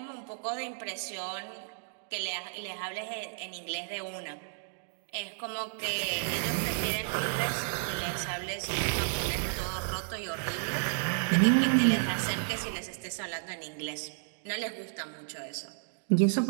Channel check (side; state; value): left; silent; digital silence